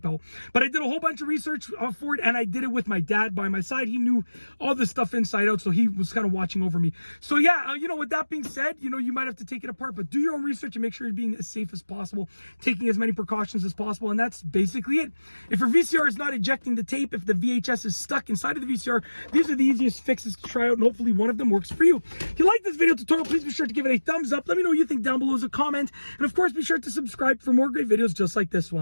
out. But I did a whole bunch of research for it, and I did it with my dad by my side. He knew all this stuff inside out, so he was kind of watching over me. So yeah, with that being said, you might have to take it apart, but do your own research and make sure you're being as safe as possible, taking as many precautions as possible, and that's basically it. If your VCR is not ejecting the tape, if the VHS is stuck inside of the VCR, these are the easiest fixes to try out, and hopefully one of them works for you. If you like this video tutorial, please be sure to give it a thumbs up. Let me know what you think down below as a comment, and of course be sure to subscribe for more great videos just like this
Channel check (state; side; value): inverted; both; correlation -1.00